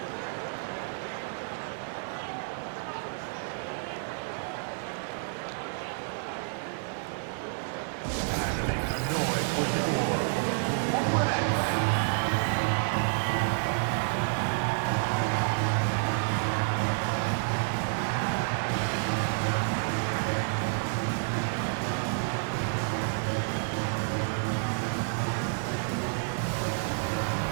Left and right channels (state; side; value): silent; left; digital silence